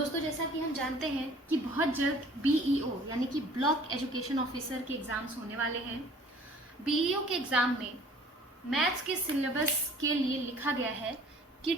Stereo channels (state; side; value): normal; both; correlation 0.51